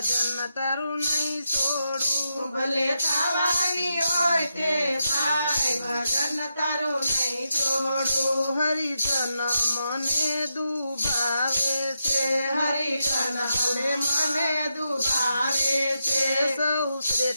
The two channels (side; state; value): both; inverted; correlation -0.86